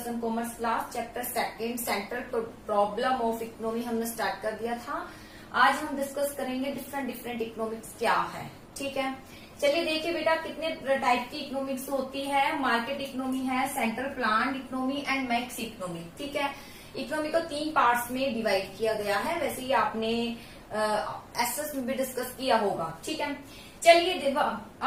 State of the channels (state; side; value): identical; both; correlation 1.00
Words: one commerce class chapter second central problem of economy हमने start कर दिया था। आज हम discuss करेंगे different economics क्या है। ठीक है, चलिए देखिए बेटा कितने टाइप की इकोनॉमिक्स होती है। मार्केट इकोनॉमी है, central plan economy and max economy. ठीक है, इकोनॉमी को 3 पार्ट्स में डिवाइड किया गया है। वैसे ही आपने एसएस में भी डिस्कस किया होगा। ठीक है, चलिए देखो